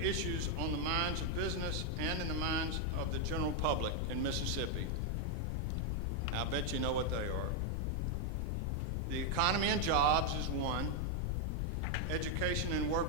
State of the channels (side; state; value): left; noise; rumble, 3 dB below the sound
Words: on the minds of business and in the minds of the general public in Mississippi. Now, I bet you know what they are. The economy and jobs is one. Education and